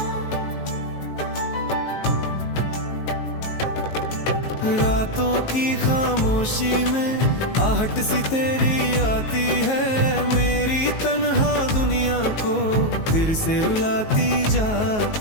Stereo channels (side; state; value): right; late; 19 ms